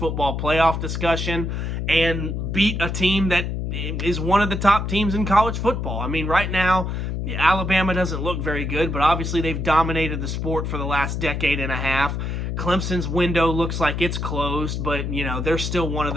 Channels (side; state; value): left; noise; hum, 2 dB below the sound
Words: playoff discussion and beat a team that is one of the top teams in college football. Right now, Alabama doesn't look very good, but obviously they've dominated the sport for the last decade and a half. Clemson's window looks like it's closed, but, they're still one of